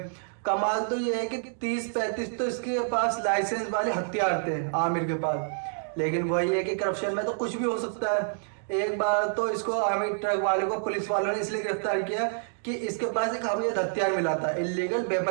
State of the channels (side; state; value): left; silent; digital silence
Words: कमाल तो ये है कि 30-35 तो इसके पास लाइसेंस वाले हथियार थे आमिर के पास। लेकिन वही है कि करप्शन में तो कुछ भी हो सकता है। एक बार तो इसको आमिर ट्रक वाले को पुलिस वालों ने इसलिए गिरफ्तार किया कि इसके पास एक अवैध हथियार मिला था, इलीगल